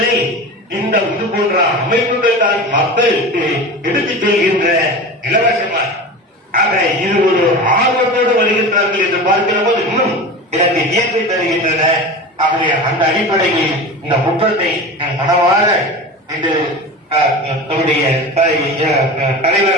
இந்த இது போன்ற அமைப்புகள் தான் மக்களுக்கு எடுத்துச் செல்கின்ற இலவசமாக. ஆக இது ஒரு ஆர்வத்தோடு வருகின்றார்கள் என்று பார்க்கிற போது இன்னும் எனக்கு இயற்கை தருகின்றன. ஆகவே அந்த அடிப்படையில் இந்த முற்றத்தை மனவார இன்று நம்முடைய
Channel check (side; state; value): both; normal; correlation 0.30